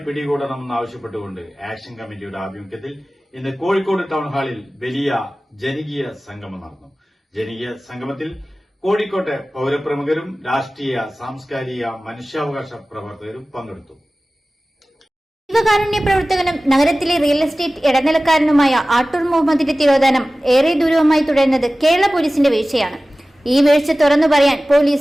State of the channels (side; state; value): both; normal; correlation 0.97